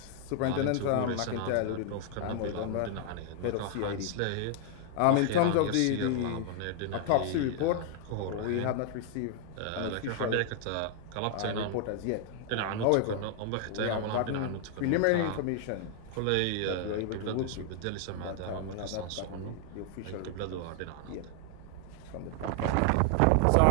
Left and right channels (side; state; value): both; different; correlation 0.00